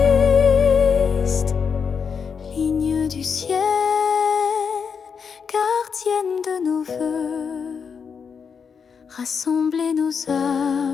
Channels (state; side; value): quieter; right; 6.3 dB